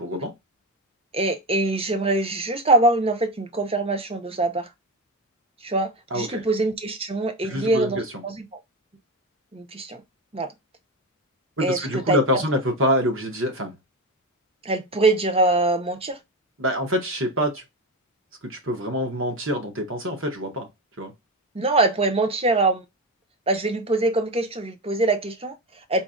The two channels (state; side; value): normal; both; correlation 0.17